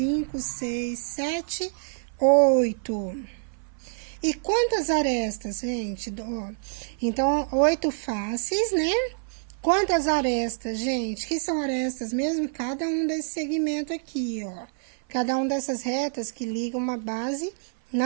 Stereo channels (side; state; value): left; silent; 56 dB below the other